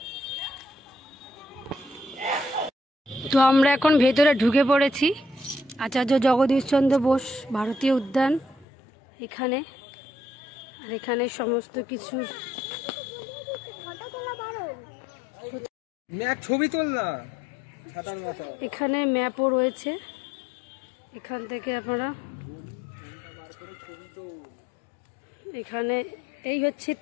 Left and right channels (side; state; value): right; drops out; at 8.7 s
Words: তো আমরা এখন ভেতরে ঢুকে পড়েছি আচার্য জগদীশচন্দ্র বোস ভারতীয় উদ্যান এখানে। আর এখানে সমস্ত কিছুর ছবি তোলা, এখানে ম্যাপও রয়েছে। এখান থেকে আপনারা এখানে এই হচ্ছে